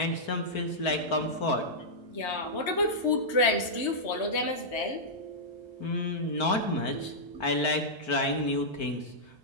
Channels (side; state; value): right; late; 1.3 ms